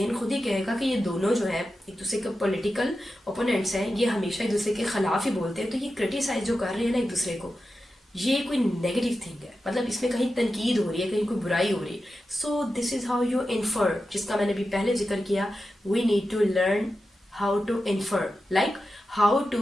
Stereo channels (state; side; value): normal; both; correlation 0.91